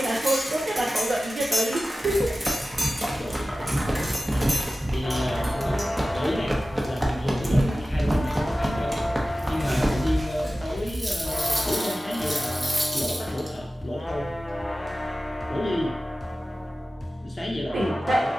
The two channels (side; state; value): both; normal; correlation 0.96